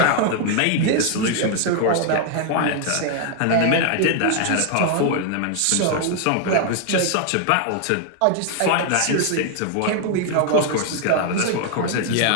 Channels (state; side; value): different; both; correlation 0.00